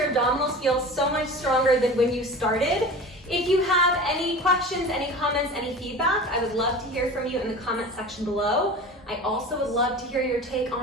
abdominals feel so much stronger than when you started. If you have any questions, any comments, any feedback, I would love to hear from you in the comment section below. I also would love to hear your take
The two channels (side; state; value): both; normal; correlation 0.35